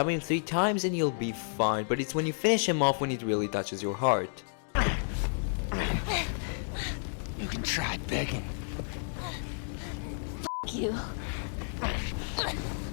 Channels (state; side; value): silent; right; digital silence